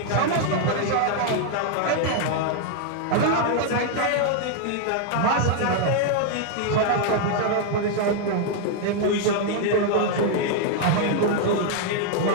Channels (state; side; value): different; both; correlation 0.00